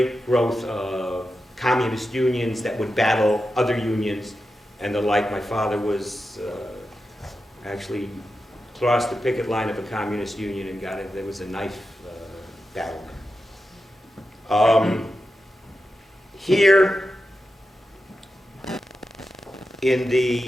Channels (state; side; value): normal; both; correlation 0.90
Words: growth of communist unions that would battle other unions and the like. My father was actually crossed the picket line of a communist union and got it. There was a knife battle. Here in